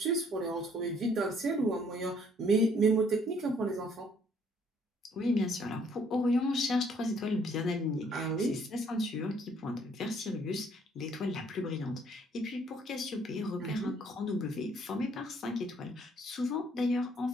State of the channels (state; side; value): normal; both; correlation 0.64